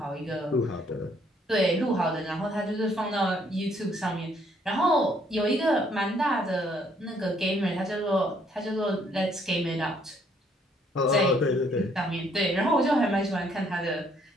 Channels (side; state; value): both; normal; correlation 0.67